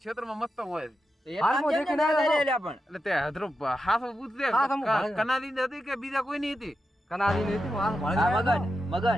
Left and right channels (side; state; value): both; normal; correlation 0.88